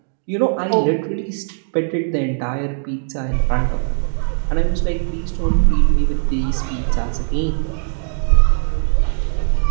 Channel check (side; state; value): left; silent; digital silence